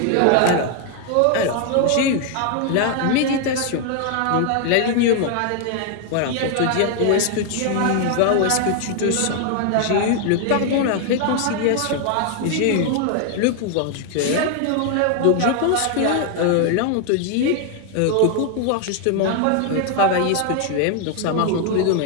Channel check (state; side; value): different; both; correlation 0.00